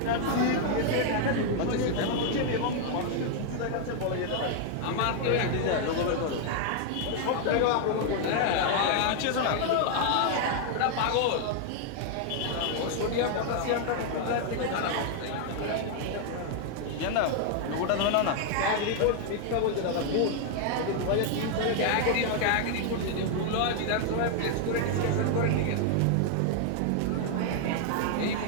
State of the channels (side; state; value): both; different; correlation 0.00